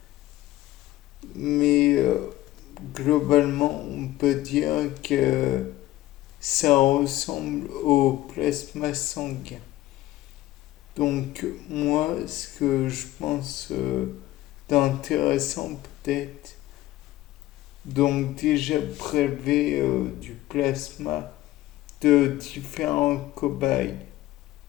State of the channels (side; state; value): right; quieter; 15.7 dB